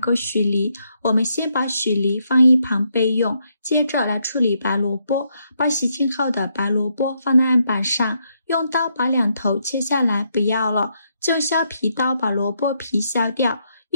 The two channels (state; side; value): inverted; both; correlation -0.77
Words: 许梨，我们先把许梨放一旁备用，接着来处理白萝卜。把洗净后的白萝卜放在案板上，用刀把2头切下来，不要了，就用削皮刀把萝卜皮削掉，